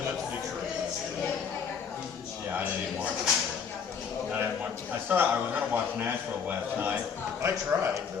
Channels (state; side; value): quieter; right; 6.6 dB